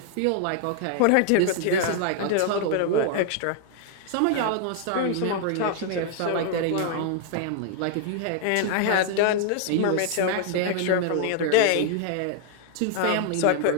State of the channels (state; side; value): different; both; correlation 0.00